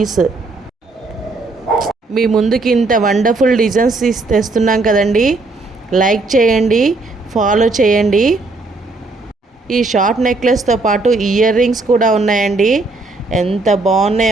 మీ ముందుకి ఇంత వండర్ఫుల్ డిజైన్స్ తెస్తున్నాం కదండి. లైక్ చేయండి, ఫాలో చేయండి. ఈ షార్ట్ నెక్లెస్తో పాటు ఇయర్ రింగ్స్ కూడా ఉన్నాయండి. ఎంత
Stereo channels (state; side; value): quieter; left; 3.4 dB